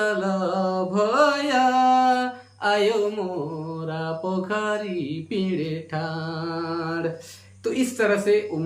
भैया आयो मोरा पोखरी पीड़े ठाड़। तो इस तरह से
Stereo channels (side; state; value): both; identical; correlation 1.00